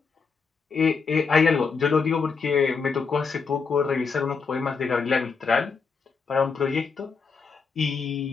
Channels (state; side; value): quieter; right; 5.2 dB